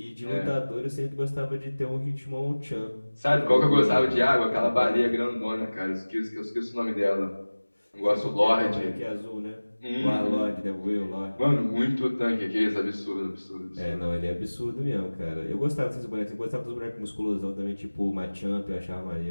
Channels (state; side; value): inverted; both; correlation -1.00